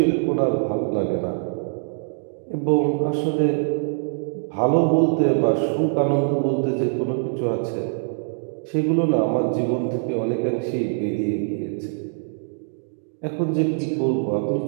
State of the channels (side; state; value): left; silent; digital silence